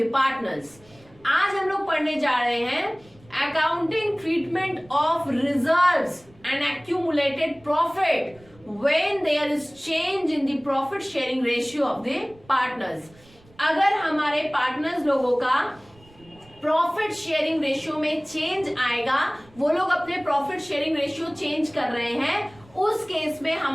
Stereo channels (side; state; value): right; noise; rumble, 27 dB below the sound